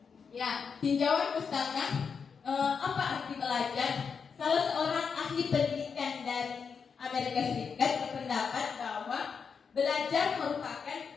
Ya, tinjauan pustaka, apa arti belajar? Salah seorang ahli pendidikan dari Amerika Serikat berpendapat bahwa belajar merupakan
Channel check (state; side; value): quieter; right; 6.0 dB